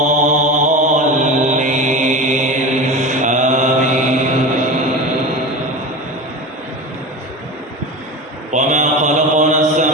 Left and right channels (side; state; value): both; normal; correlation 0.28